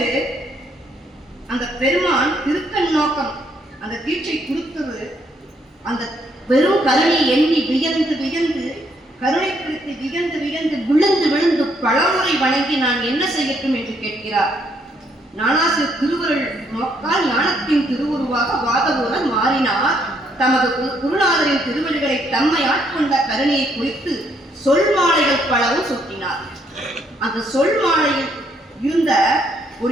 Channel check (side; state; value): both; normal; correlation 0.71